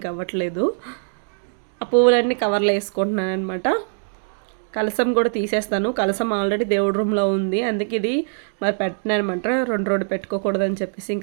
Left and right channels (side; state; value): left; silent; digital silence